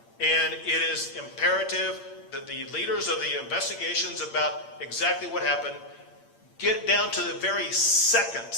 And it is imperative that the leaders of the investigations about exactly what happened get down to the very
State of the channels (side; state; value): right; late; 8.7 ms